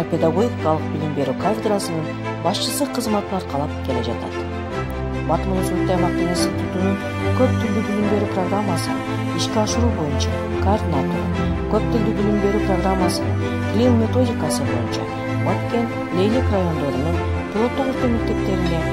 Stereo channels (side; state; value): both; identical; correlation 1.00